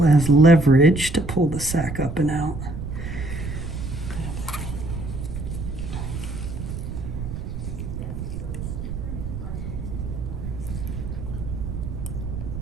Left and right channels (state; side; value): noise; right; rumble, 6 dB below the sound